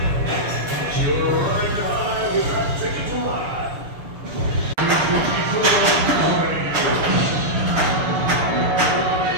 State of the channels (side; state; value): left; late; 6.8 ms